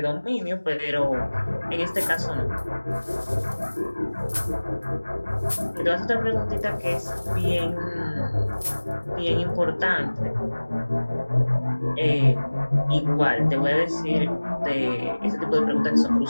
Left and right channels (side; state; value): both; inverted; correlation -1.00